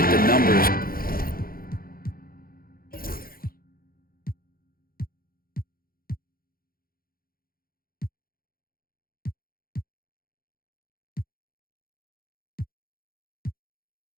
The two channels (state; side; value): late; right; 0.42 ms